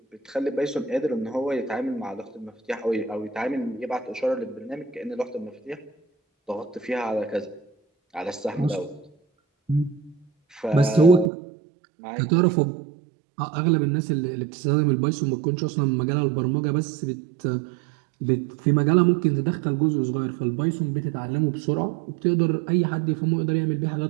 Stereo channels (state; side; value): drops out; left; at 11.3 s